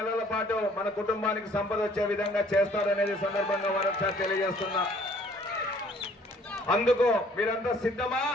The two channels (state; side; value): normal; both; correlation 0.58